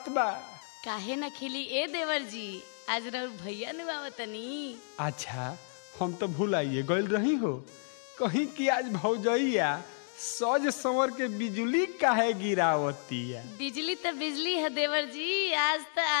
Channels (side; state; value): right; silent; digital silence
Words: बा? काहे न खिली ए देवर जी, आज रउर भैया नु आवतनी। अच्छा, हम तो भुलाइए गइल रही हो कहीं कि आज भौजैया सज संवर के बिजली काहे गिरावती है? बिजली तो बिजली है देवर जी, आज तो